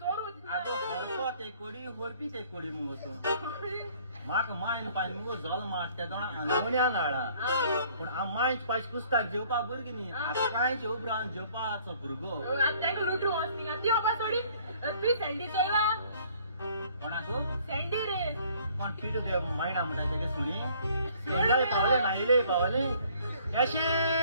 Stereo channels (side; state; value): both; inverted; correlation -0.58